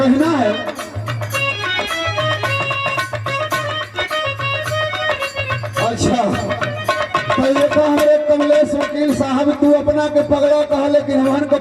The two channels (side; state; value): both; identical; correlation 1.00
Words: है अच्छा पहले तो हमारे कमलेश वकील साहब तू अपना के पगड़ा कहा, लेकिन हमन को